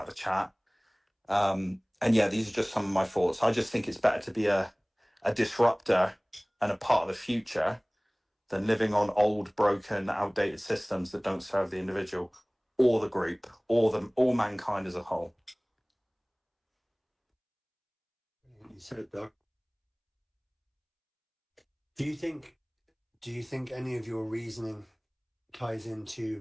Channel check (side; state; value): both; identical; correlation 1.00